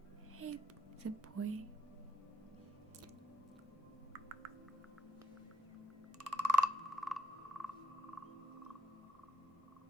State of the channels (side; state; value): both; normal; correlation 0.77